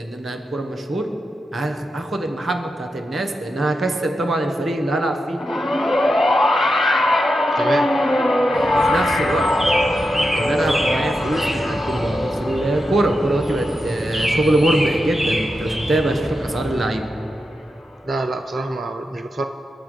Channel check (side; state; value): both; normal; correlation 0.88